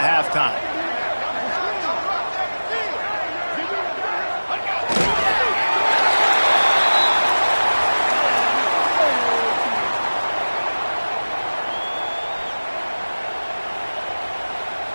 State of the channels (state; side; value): inverted; both; correlation -1.00